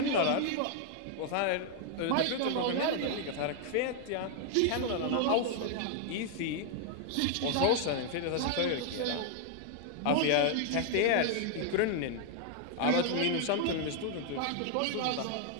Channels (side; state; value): both; different; correlation 0.00